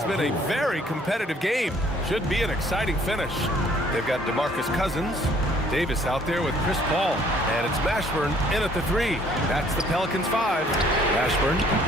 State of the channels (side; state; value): both; normal; correlation 0.60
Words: been a very competitive game. Should be an exciting finish. They've got DeMarcus Cousins. Davis out there with Chris Paul. And it's Mashburn in at the 3. That's the Pelicans 5. Mashburn.